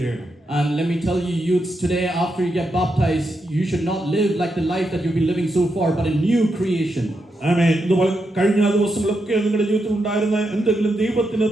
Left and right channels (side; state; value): both; normal; correlation 0.84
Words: And let me tell you, youths, today after you get baptized, you should not live like the life that you've been living so far, but a new creation. ആമേൻ. കഴിഞ്ഞ ദിവസങ്ങളൊക്കെ നിങ്ങളുടെ ജീവിതത്തിൽ ഉണ്ടായിരുന്ന എന്തെങ്കിലും ദൈവത്തിന്